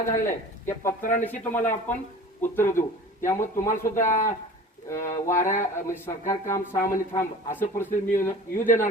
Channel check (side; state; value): both; normal; correlation 0.41